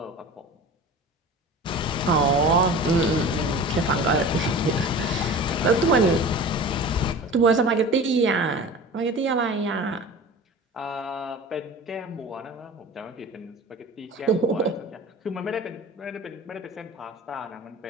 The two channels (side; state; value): both; normal; correlation 0.37